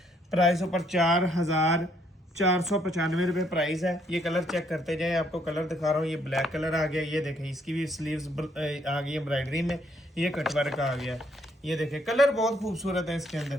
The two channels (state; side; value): normal; both; correlation 0.69